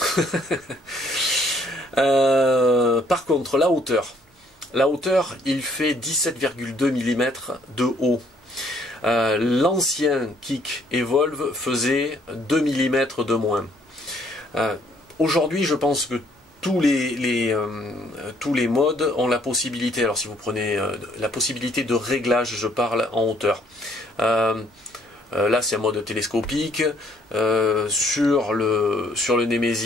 Par contre, la hauteur, il fait 17,2 mm de haut. L'ancien kick Evolve faisait 2 mm de moins. Aujourd'hui, je pense que tous les modes ont la possibilité, alors si vous prenez la possibilité de réglage, je parle en hauteur. Là c'est un mode télescopique, sur le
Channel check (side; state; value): both; normal; correlation 0.65